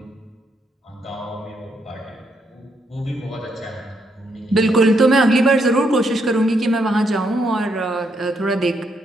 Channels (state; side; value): normal; both; correlation 0.76